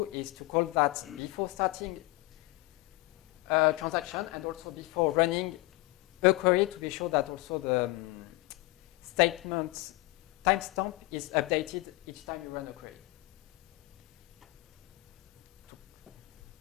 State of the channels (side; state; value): right; quieter; 21.7 dB